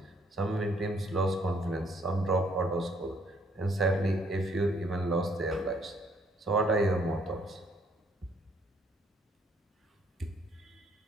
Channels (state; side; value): normal; both; correlation 0.66